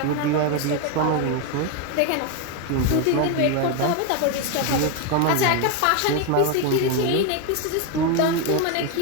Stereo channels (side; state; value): both; different; correlation 0.02